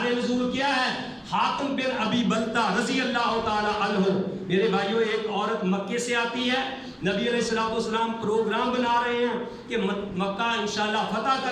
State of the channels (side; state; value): both; identical; correlation 1.00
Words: نزول کیا ہے؟ حاتم بن ابی بلتہ رضی اللہ تعالی عنہ. میرے بھائیو ایک عورت مکے سے آتی ہے، نبی علیہ السلام پروگرام بنا رہے ہیں کہ مکہ انشاءاللہ فتح